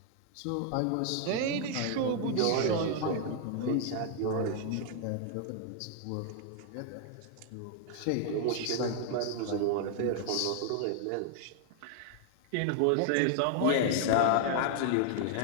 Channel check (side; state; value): both; different; correlation 0.00